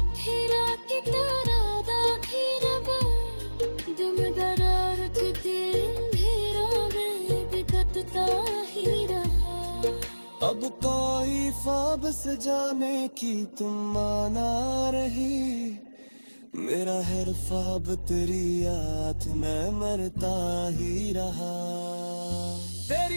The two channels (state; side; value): inverted; both; correlation -1.00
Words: फिरा की तरह दाखी रब, दुम दरार अब कोई ख्वाब से जाने की तुम माना रही, मेरा हर ख्वाब तेरी याद में मरता ही रहा।